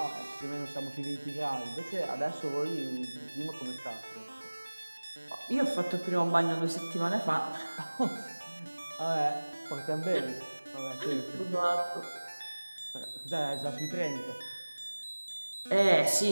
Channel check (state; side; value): inverted; both; correlation -1.00